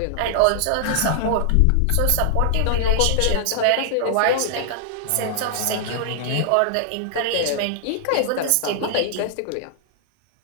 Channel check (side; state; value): both; different; correlation -0.01